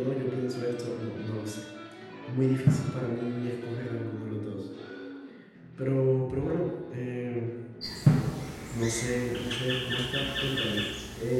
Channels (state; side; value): identical; both; correlation 1.00